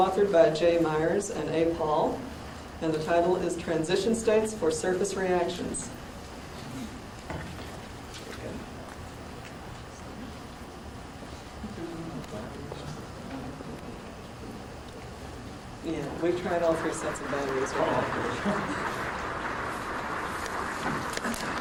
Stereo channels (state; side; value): identical; both; correlation 1.00